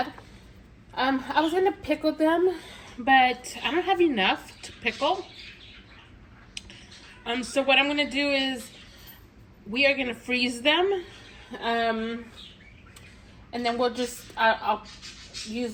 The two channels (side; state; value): both; identical; correlation 1.00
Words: I was going to pickle them, but I don't have enough to pickle. So what I'm going to do is we are going to freeze them. And then we'll just, I'll